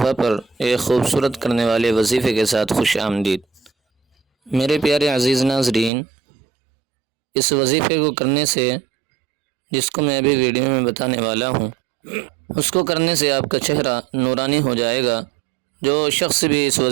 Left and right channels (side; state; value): left; drops out; at 5.9 s